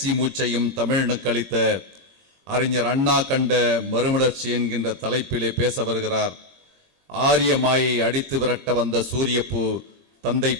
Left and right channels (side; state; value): left; late; 21 ms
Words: மூச்சையும் தமிழனுக்கு அளித்த அறிஞர் அண்ணா கண்ட மறுமலர்ச்சி என்கின்ற தலைப்பிலே பேச வருகிறார். ஆரிய மாயை அடித்து விரட்ட வந்த சூரியப்பூ தந்தை